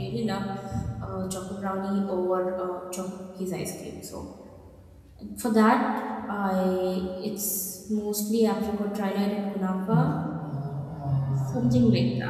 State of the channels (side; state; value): both; identical; correlation 1.00